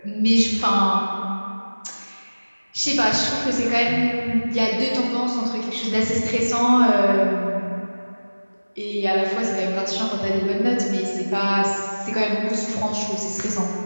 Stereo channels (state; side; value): inverted; both; correlation -1.00